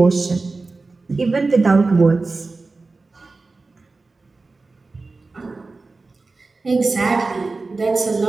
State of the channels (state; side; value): quieter; left; 3.7 dB